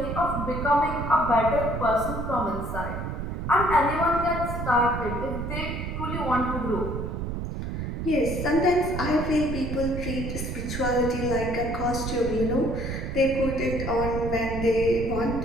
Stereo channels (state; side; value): noise; right; rumble, 4 dB below the sound